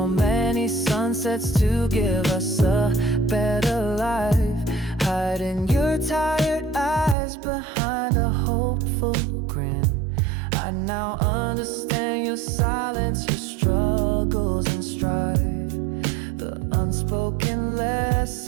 many sunsets to give us a better life. Hiding your tired eyes behind a hopeful grin. I now understand your silence, your struggles and strife, the unspoken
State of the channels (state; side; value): drops out; left; at 7.2 s